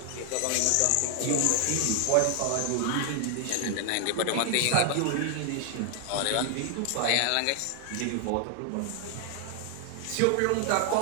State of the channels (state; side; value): different; both; correlation 0.00